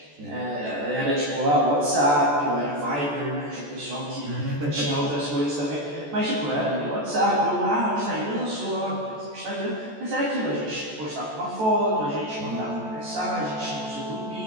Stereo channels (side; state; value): left; late; 14 ms